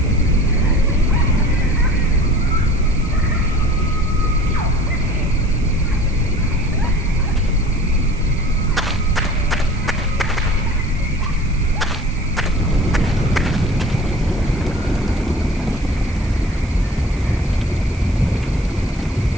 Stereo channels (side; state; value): right; noise; hiss, 24 dB below the sound